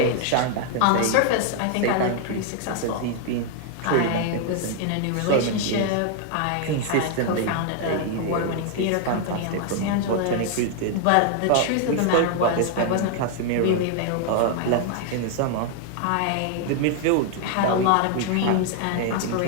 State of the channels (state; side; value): different; both; correlation 0.00